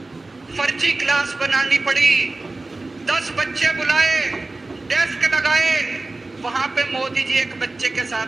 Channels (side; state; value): left; quieter; 3.2 dB